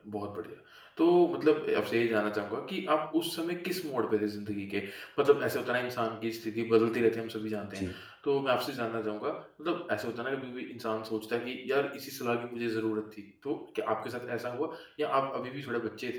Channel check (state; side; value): identical; both; correlation 1.00